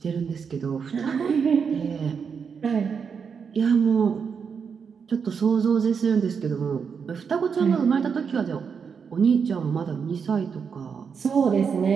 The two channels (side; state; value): left; quieter; 6.3 dB